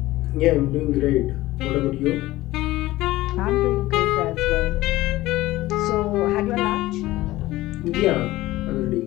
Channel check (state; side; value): quieter; right; 17.5 dB